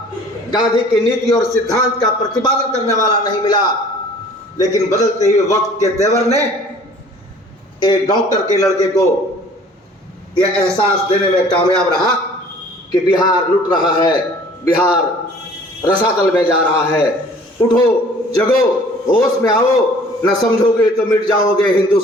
गांधी की नीति और सिद्धांत का प्रतिपादन करने वाला नहीं मिला। लेकिन बदलते हुए वक्त के तेवर ने एक डॉक्टर के लड़के को यह एहसास देने में कामयाब रहा कि बिहार लुट रहा है, बिहार रसातल में जा रहा है। उठो, जगो, होश में आओ, न समझोगे तो मिट जाओगे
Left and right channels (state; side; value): normal; both; correlation 0.51